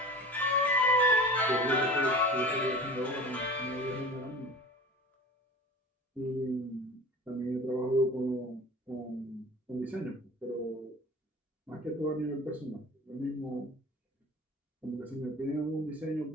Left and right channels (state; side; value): normal; both; correlation 0.38